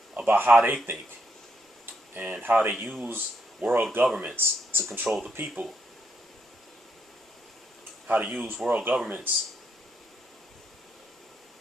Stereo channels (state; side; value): normal; both; correlation 0.77